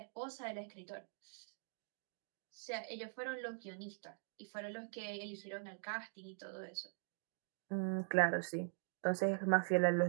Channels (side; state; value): left; silent; digital silence